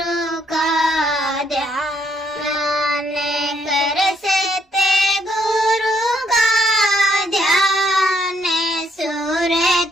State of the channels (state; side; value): normal; both; correlation 0.71